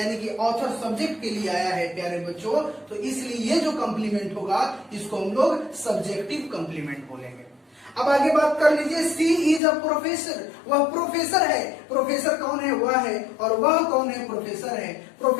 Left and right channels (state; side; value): drops out; right; at 9.6 s